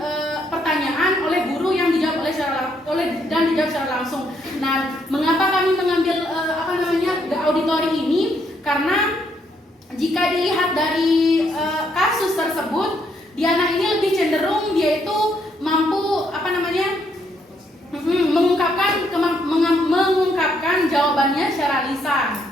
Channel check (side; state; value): both; normal; correlation 0.73